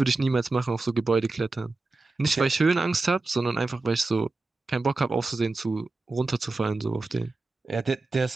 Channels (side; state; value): left; quieter; 3.4 dB